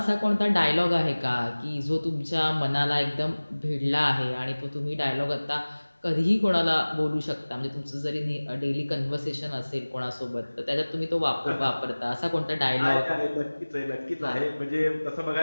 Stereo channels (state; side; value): inverted; both; correlation -1.00